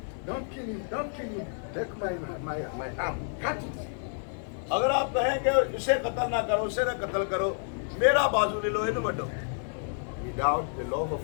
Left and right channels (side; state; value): right; silent; digital silence